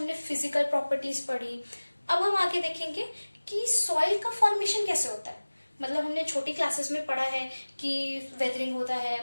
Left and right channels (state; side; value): inverted; both; correlation -1.00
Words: फिजिकल प्रॉपर्टीज पढ़ी। अब हम आगे देखेंगे कि सॉइल का फॉर्मेशन कैसे होता है। मतलब हमने छोटी क्लासेस में पढ़ा है कि वेदरिंग होता है,